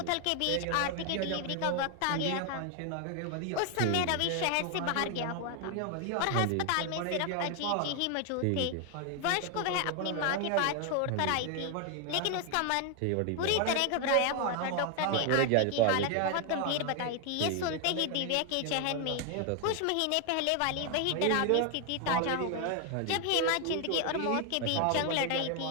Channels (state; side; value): different; both; correlation 0.01